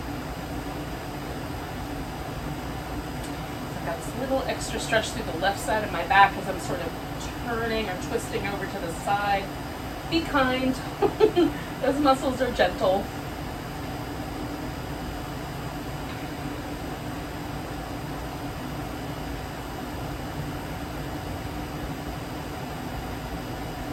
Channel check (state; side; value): identical; both; correlation 1.00